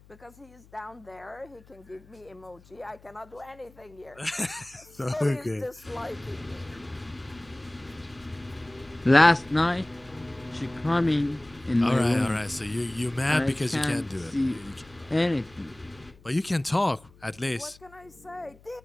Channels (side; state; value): left; noise; hum, 25 dB below the sound